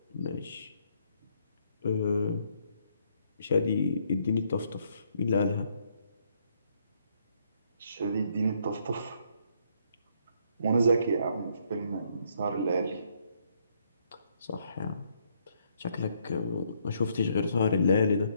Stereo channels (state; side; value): inverted; both; correlation -0.71